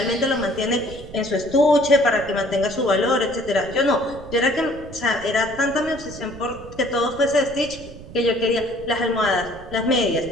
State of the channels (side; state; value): right; noise; rumble, 16 dB below the sound